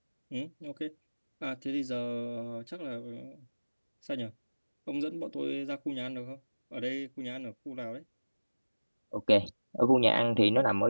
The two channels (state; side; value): inverted; both; correlation -1.00